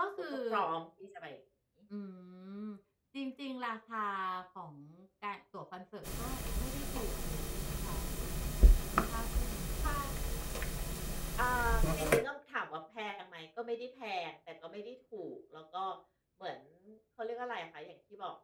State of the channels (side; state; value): both; identical; correlation 1.00